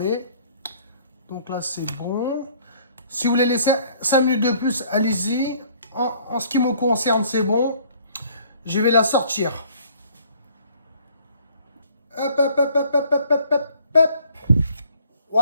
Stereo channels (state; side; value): inverted; both; correlation -0.59